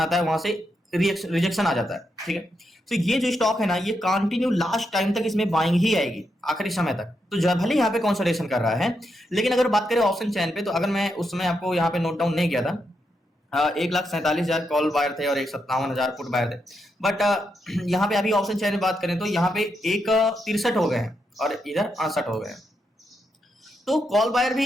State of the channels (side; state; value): both; normal; correlation 0.83